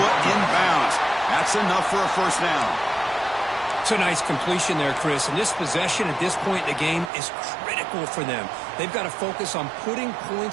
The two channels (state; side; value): drops out; left; at 7.1 s